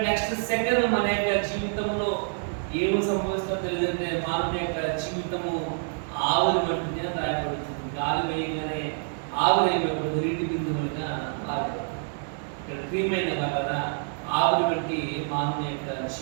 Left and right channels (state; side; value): silent; left; 60 dB below the other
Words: నెక్స్ట్ సెకండ్ మన యొక్క జీవితంలో ఏమి సంభవిస్తుందో తెలియదంటే మానవ యొక్క జీవితము ఆవిరి వంటిది అని రాయబడుతుంది. గాలి వేయగానే ఆవిరి నీటి బిందువులుగా మారదు. ఇక్కడ ప్రియమైన వల్ల ఆవిరి వంటి మానవ యొక్క